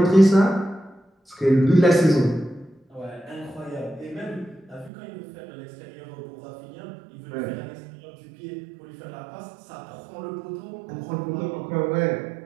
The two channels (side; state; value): left; drops out; at 4.9 s